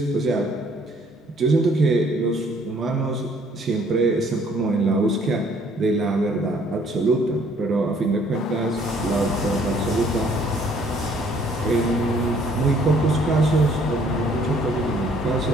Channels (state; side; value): normal; both; correlation 0.61